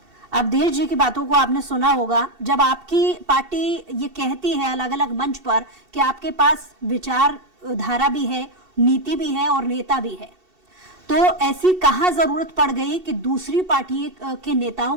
अवधेश जी की बातों को आपने सुना होगा। जब आपकी पार्टी ये कहती है अलग अलग मंच पर कि आपके पास विचार धारा भी है, नीति भी है और नेता भी है, तो ऐसी कहां जरूरत पड़ गई कि दूसरी पार्टी के नेताओं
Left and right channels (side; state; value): left; late; 2.7 ms